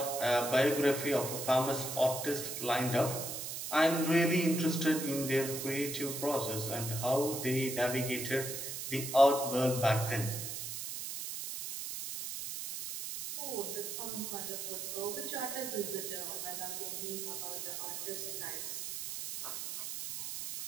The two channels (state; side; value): noise; right; hiss, 5 dB below the sound